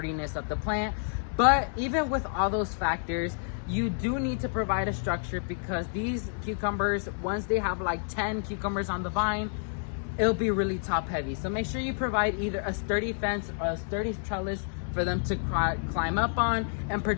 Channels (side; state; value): right; silent; digital silence